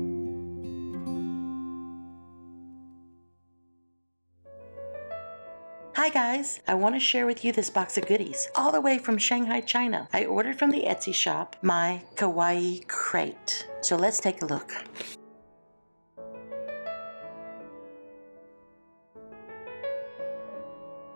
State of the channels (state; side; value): inverted; both; correlation -1.00